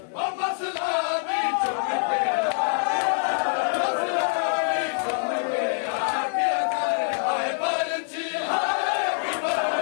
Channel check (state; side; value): silent; right; 58 dB below the other